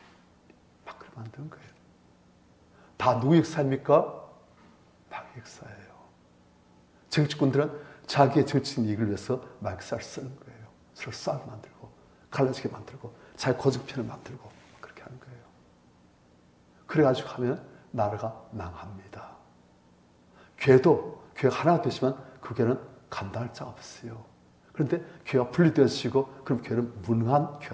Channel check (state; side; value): identical; both; correlation 1.00